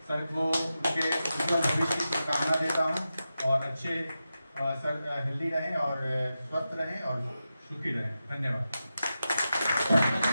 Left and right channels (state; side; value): inverted; both; correlation -0.91